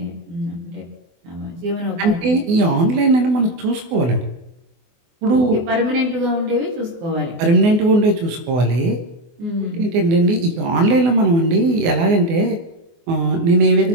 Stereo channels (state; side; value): late; left; 24 ms